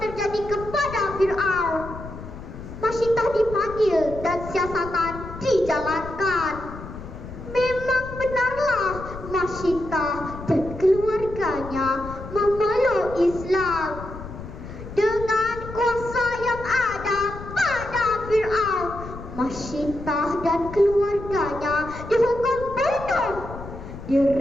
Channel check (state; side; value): noise; left; rumble, 12 dB below the sound